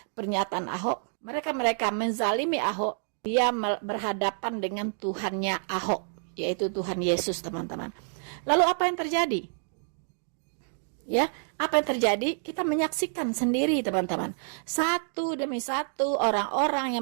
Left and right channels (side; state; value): left; silent; digital silence